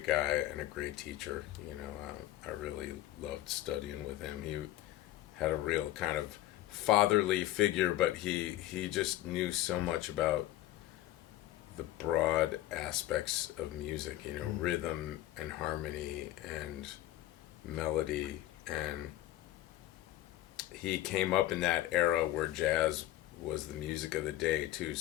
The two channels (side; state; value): right; quieter; 14.7 dB